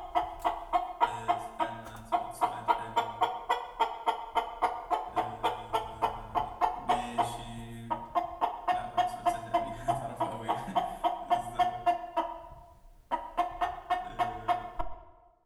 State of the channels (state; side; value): identical; both; correlation 1.00